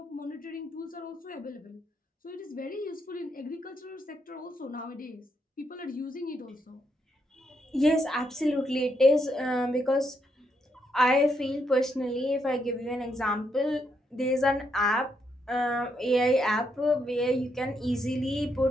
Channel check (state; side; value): normal; both; correlation 0.78